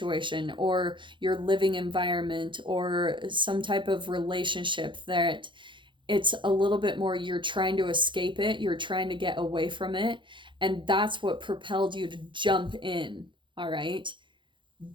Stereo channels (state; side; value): late; left; 0.23 ms